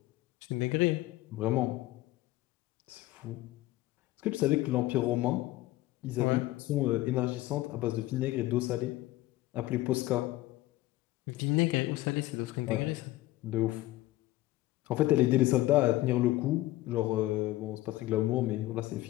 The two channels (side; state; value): right; quieter; 17.2 dB